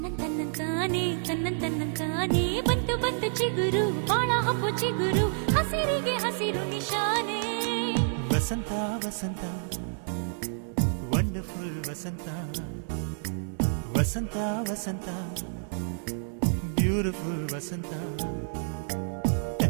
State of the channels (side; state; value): left; silent; digital silence